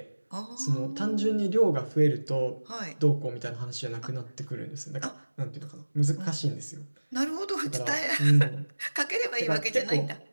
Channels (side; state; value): both; inverted; correlation -1.00